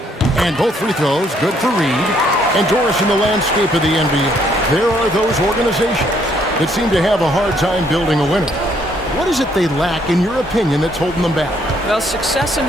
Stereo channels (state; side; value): normal; both; correlation 0.68